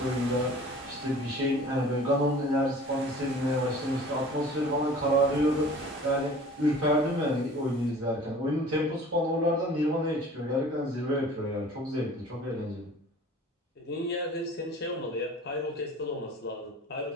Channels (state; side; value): normal; both; correlation 0.46